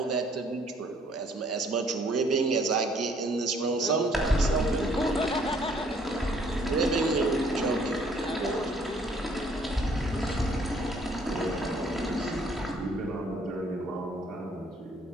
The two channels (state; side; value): normal; both; correlation 0.62